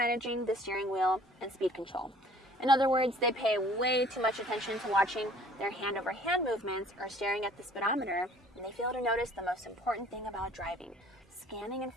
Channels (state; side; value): normal; both; correlation 0.53